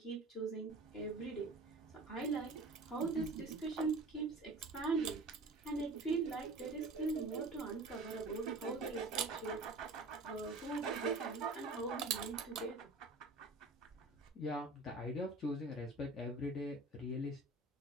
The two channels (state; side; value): quieter; left; 3.1 dB